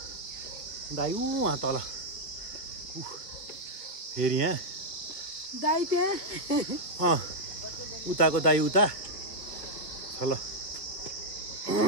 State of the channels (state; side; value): late; right; 1.6 ms